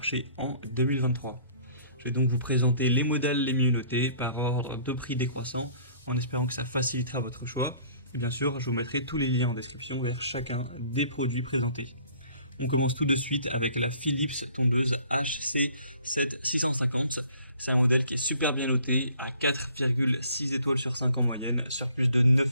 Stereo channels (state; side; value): inverted; both; correlation -0.55